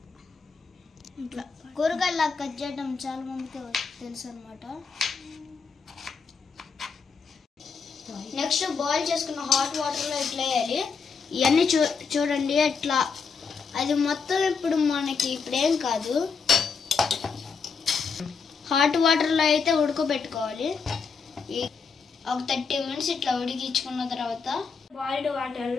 ఇట్లా కూరగాయలా కట్ చేయడం చాలా మందికి తెలుసు అనమాట. నెక్స్ట్ బాయిల్ చేసుకున్న హాట్ వాటర్లో ఇట్లా వేయాలి. ఇవన్నీ చూడండి ఎట్లా అది మొత్తం ఇప్పుడు మనకి ఇప్పుడేం కాదు. హాట్ వాటర్లో అయితే ఉడకబెట్టుకోవాలి. ఒక 30 మినిట్స్ ఇట్లా ఉడికించుకున్న తర్వాత బాయిల్డ్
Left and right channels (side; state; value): right; quieter; 5.4 dB